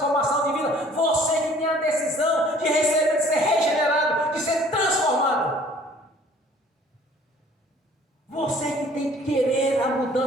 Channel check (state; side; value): normal; both; correlation 0.54